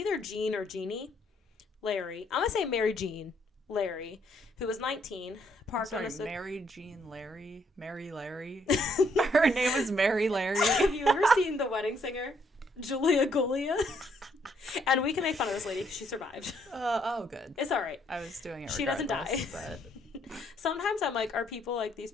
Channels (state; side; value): normal; both; correlation 0.70